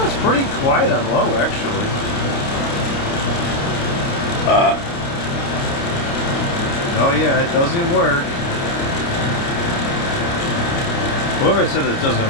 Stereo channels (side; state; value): right; late; 29 ms